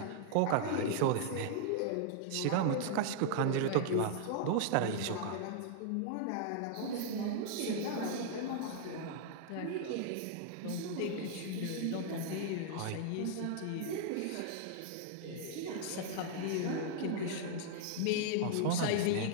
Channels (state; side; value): different; both; correlation -0.01